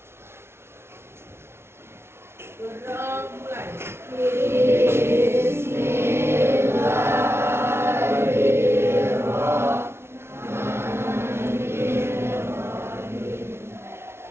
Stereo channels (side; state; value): left; late; 0.12 ms